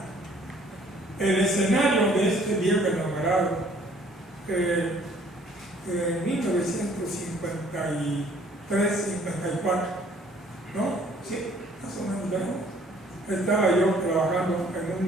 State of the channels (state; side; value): normal; both; correlation 0.59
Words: El escenario de este viejo enamorado, en 1953-54, ¿no? Sí, más o menos, ¿no? Estaba yo trabajando en un